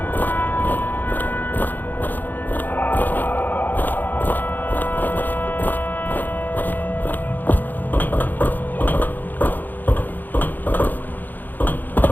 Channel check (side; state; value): right; late; 0.087 ms